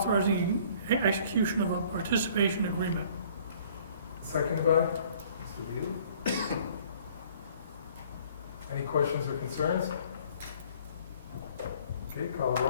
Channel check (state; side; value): inverted; both; correlation -0.55